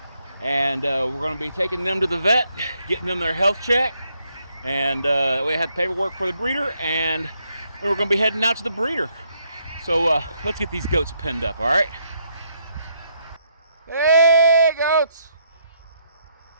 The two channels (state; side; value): inverted; both; correlation -0.75